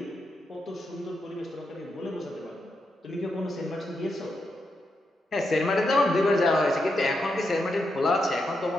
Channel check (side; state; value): both; normal; correlation 0.84